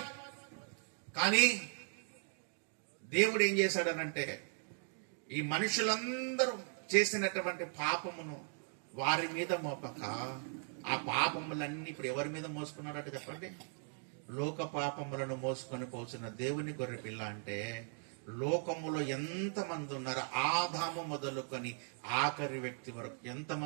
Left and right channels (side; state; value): left; silent; 52 dB below the other